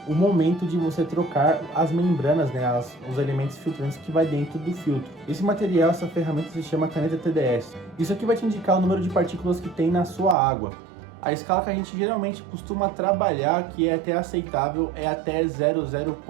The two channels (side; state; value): left; drops out; at 10.4 s